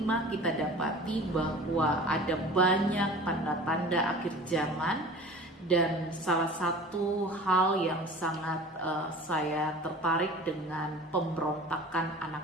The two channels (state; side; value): normal; both; correlation 0.41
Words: kita dapati bahwa ada banyak tanda-tanda akhir zaman. Dan salah satu hal yang sangat saya tertarik dengan pemberontakan